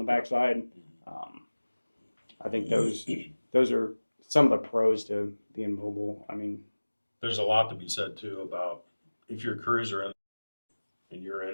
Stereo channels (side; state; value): both; inverted; correlation -1.00